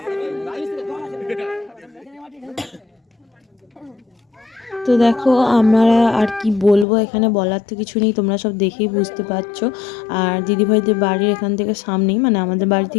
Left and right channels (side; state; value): right; drops out; at 6.9 s